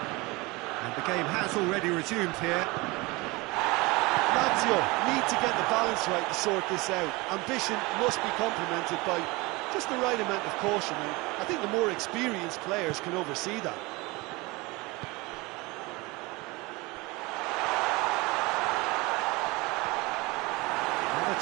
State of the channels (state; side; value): quieter; left; 23.9 dB